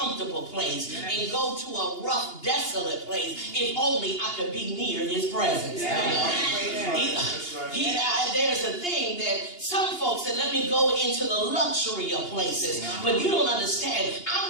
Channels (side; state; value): right; late; 2.8 ms